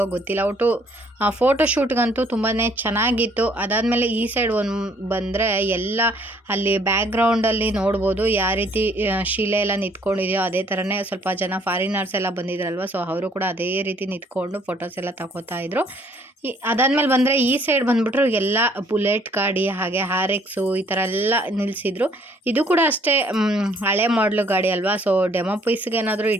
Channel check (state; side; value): normal; both; correlation 0.62